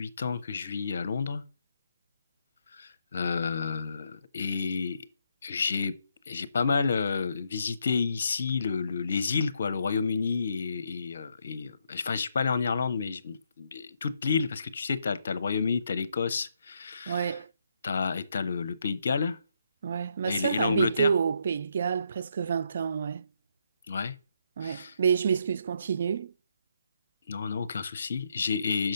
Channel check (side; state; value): both; inverted; correlation -0.77